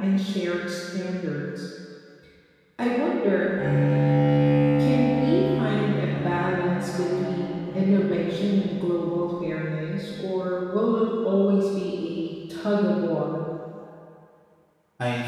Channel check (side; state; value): both; identical; correlation 1.00